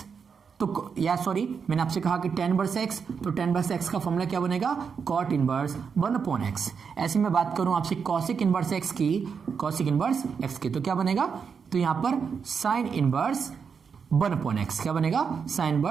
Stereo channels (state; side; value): quieter; left; 6.2 dB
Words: तो या सॉरी, मैंने आपसे कहा कि tan इनवर्स एक्स, तो tan इनवर्स एक्स का फॉर्मूला क्या बनेगा? Cot inverse 1 x. ऐसे मैं बात करूं आपसे कॉसिक इनवर्स एक्स की, कॉसिक इनवर्स एक्स की, तो क्या बनेगा? तो यहां पर साइन इनवर्स 1 एक्स। क्या बनेगा? Sine